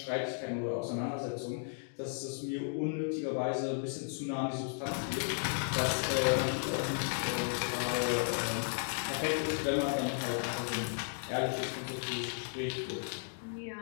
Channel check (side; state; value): right; silent; digital silence